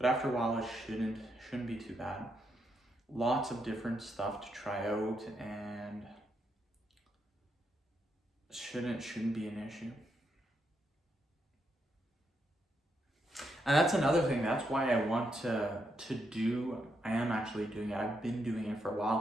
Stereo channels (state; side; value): normal; both; correlation 0.80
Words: after a while it shouldn't be too bad. Lots of different stuff to try out, and shouldn't be an issue. And that's another thing. That's why I want to do. I am actually doing it. I've been doing it for a